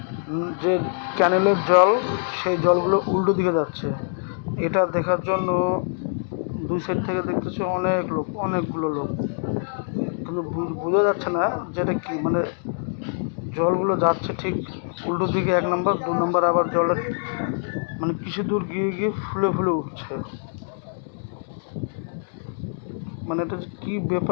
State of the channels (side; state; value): right; silent; digital silence